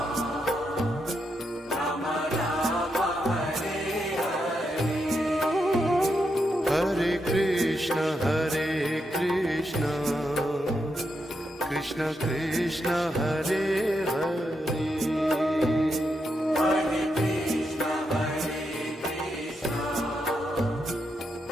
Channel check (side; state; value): both; normal; correlation 0.83